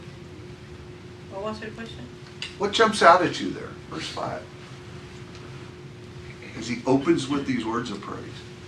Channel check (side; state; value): both; identical; correlation 1.00